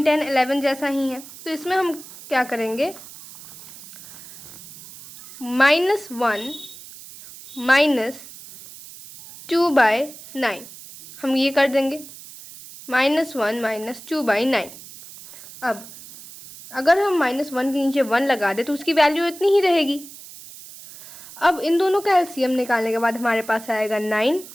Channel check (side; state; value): right; noise; hiss, 17 dB below the sound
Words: 10 11 जैसा ही है, तो इसमें हम क्या करेंगे -1 -2/9 हम ये कर देंगे, -1 -2/9। अब अगर हम -1 के नीचे 1 लगा दें तो उसकी वैल्यू इतनी ही रहेगी। अब इन दोनों का एलसीएम निकालने के बाद हमारे पास आएगा 9